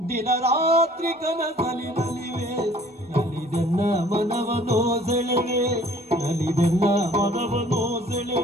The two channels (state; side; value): normal; both; correlation 0.54